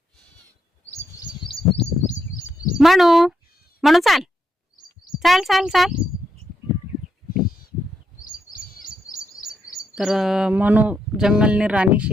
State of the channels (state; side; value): normal; both; correlation 0.79